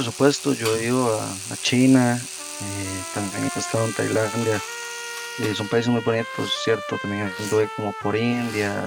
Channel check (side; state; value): both; identical; correlation 1.00